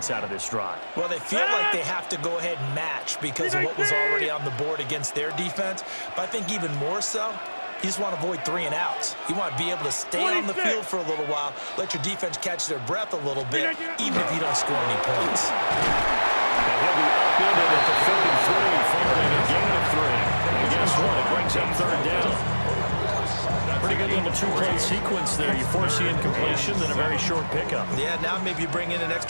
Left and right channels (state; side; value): inverted; both; correlation -1.00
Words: out of this drive? Well, they feel like they have to go ahead and match because of what was already on the board against their defense. But I think even more so, you just want to avoid 3 and outs. You want to be able to stay on the field for a little while, let your defense catch their breath a little bit, even if you don't score any points. And he'll be upended at the 33 following a gain of 3. And guess what? It brings up 3rd down. Pretty good little 2-play sequence there. You force the incompletion, then a very short pickup. Yeah, now maybe you bring in an